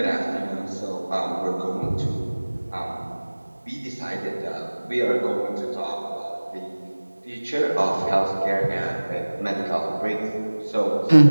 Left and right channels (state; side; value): inverted; both; correlation -1.00